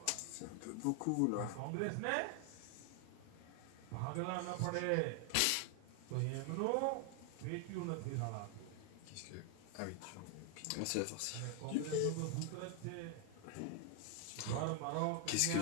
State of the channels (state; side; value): different; both; correlation 0.00